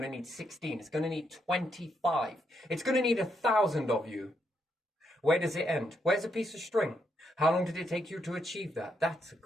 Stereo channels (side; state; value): both; normal; correlation 0.78